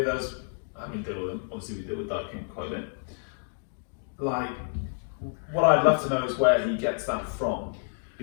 us, having dealt with them, obviously we deal with Dark King quite a bit. Like, what I'd love to know is where he gets that from,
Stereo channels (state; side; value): silent; right; 59 dB below the other